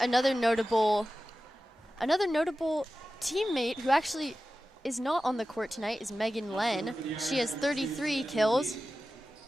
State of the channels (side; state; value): both; normal; correlation 0.94